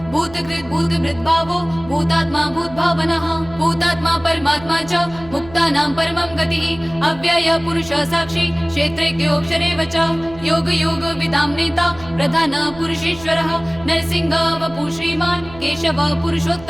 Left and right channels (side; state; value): right; noise; hum, 18 dB below the sound